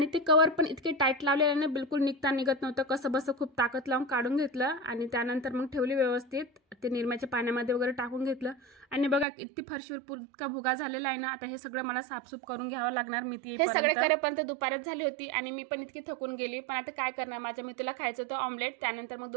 ते कवर पण इतके टाईट लावलेले ना, बिलकुल निघत नव्हतं. कसं बसं खूप ताकद लावून काढून घेतलं आणि त्यानंतर मग ठेवली व्यवस्थित. ते निरम्याच्या पाण्यामध्ये वगैरे टाकून घेतलं आणि बघा किती फरशीवर इतका भुगा झालेला आहे ना. आता हे सगळं मला साफसूफ करून घ्यावं लागणार. मी हे सगळे करेपर्यंत दुपारच झाली होती आणि मी पण इतकी थकून गेली. पण आता काय करणार, माझ्या मित्राला खायचं होतं ऑमलेट. त्यानंतर मग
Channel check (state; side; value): drops out; left; at 9.2 s